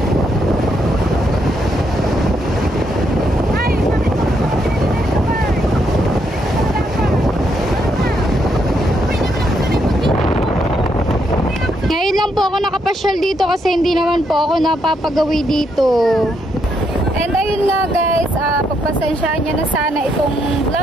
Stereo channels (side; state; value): both; normal; correlation 0.76